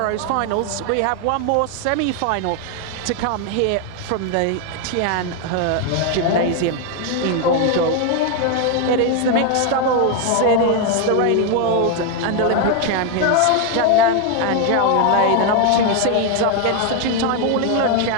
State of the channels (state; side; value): different; both; correlation 0.01